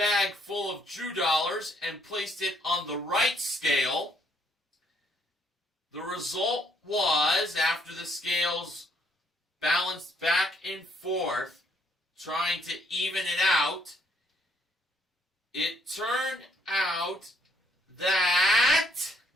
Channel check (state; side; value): normal; both; correlation 0.69